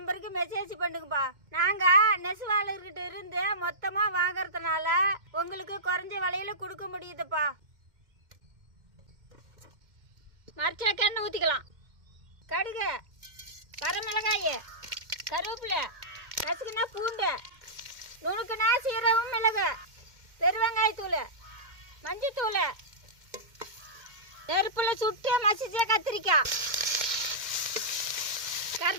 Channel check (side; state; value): left; late; 2.1 ms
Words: மெசேஜ் பண்ணுங்கப்பா. நாங்கள் நெசவாளர்கிட்ட இருந்து மொத்தமாக வாங்கறதுனால உங்களுக்கு குறைஞ்ச விலையில கொடுக்க முடியுதுப்பா. மரச்சாக்கெண்ணெய் ஊற்றிக்கலாம். கடுகு, வரமிளகாய், கருவேப்பிலை, நசுக்குனா பூண்டு, நுணுக்குனா சீரகம், மிளகு, பெருவெங்காயத்தூள், மஞ்சத்தூள், நெருப்புல சுட்டு மசிச்ச கத்திரிக்காய்,